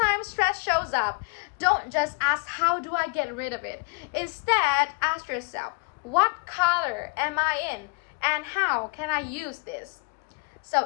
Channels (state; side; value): quieter; right; 31.2 dB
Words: stress shows up, don't just ask, how do I get rid of it? Instead, ask yourself, what color am I in? And how can I use this?